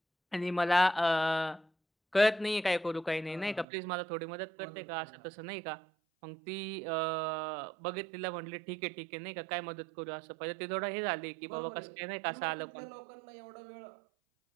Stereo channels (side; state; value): left; drops out; at 3.7 s